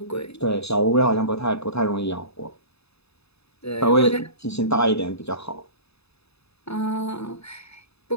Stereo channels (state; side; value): late; right; 0.79 ms